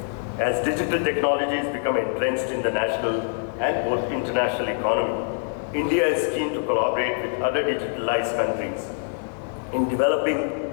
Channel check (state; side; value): silent; right; 62 dB below the other